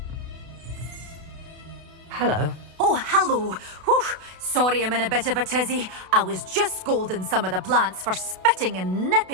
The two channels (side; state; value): left; late; 32 ms